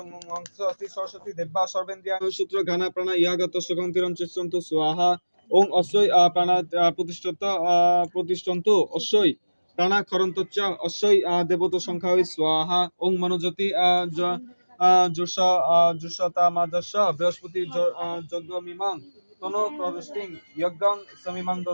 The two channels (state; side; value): inverted; both; correlation -1.00